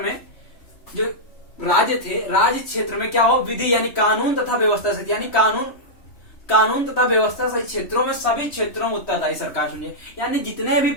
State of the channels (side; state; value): right; late; 3.1 ms